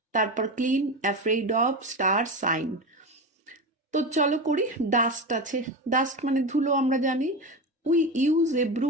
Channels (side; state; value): both; normal; correlation 0.21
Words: তারপর clean, afraid of, star, shine. তো চলো করি। ডাস্ট আছে, ডাস্ট মানে ধুলো আমরা জানি। We use a